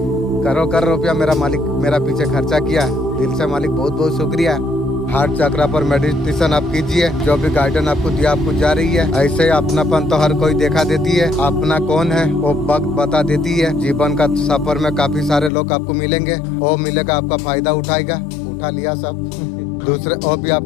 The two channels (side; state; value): right; drops out; at 15.5 s